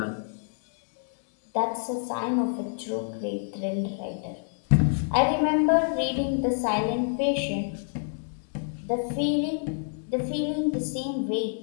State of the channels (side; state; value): right; silent; digital silence